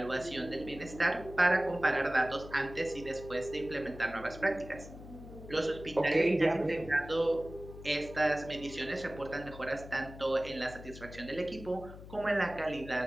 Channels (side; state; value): left; noise; hum, 15 dB below the sound